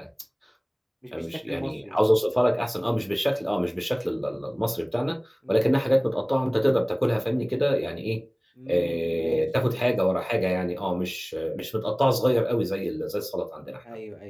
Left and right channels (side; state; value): both; identical; correlation 1.00